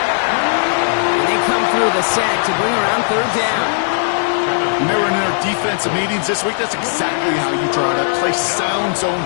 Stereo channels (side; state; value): right; silent; digital silence